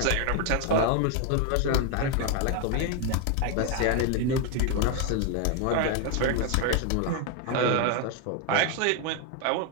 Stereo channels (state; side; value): different; both; correlation 0.01